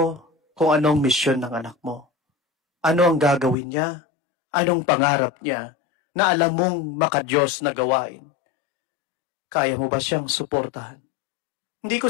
kung anong misyon ng anak mo, ano ang gagawin niya, anong pangarap niya, na alam mong makadiyos na gawain, kaya mo ba siyang suportahan? Hindi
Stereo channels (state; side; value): drops out; right; at 3.6 s